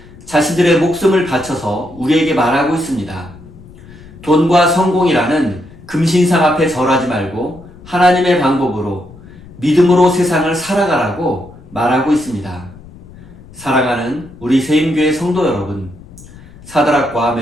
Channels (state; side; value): noise; left; rumble, 20 dB below the sound